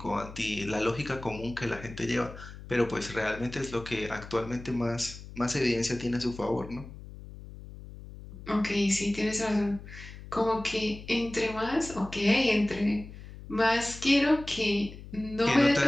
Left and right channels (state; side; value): noise; left; hum, 14 dB below the sound